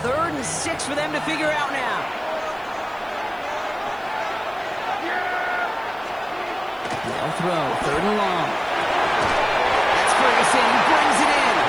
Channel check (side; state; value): right; noise; hiss, 29 dB below the sound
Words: 3rd and 6 for them to figure out now. They'll throw, 3rd and long. That's Ferguson, he brings it in.